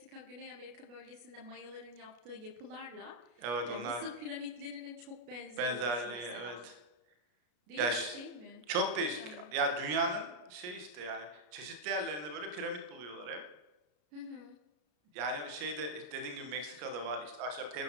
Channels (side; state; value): left; late; 33 ms